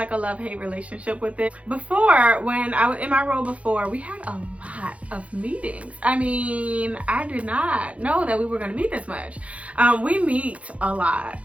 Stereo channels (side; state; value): left; late; 0.064 ms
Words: a love-hate relationship with it. Before, when I was in my role before, we had a lot of meetings. I mean, I did not know that we were going to meet this much. We meet a lot.